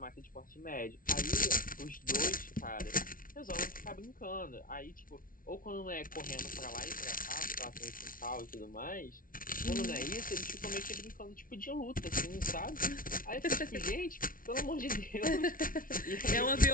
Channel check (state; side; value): late; right; 0.40 ms